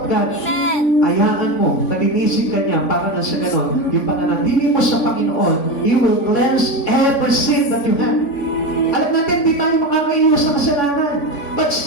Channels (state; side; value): late; right; 3.5 ms